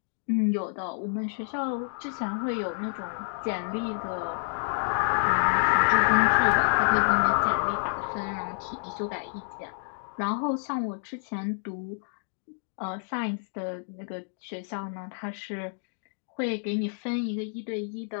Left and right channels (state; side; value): silent; right; digital silence